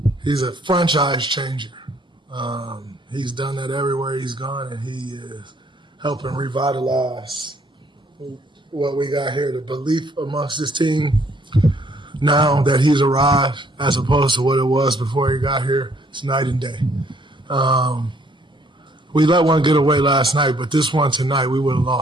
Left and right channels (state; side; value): normal; both; correlation 0.64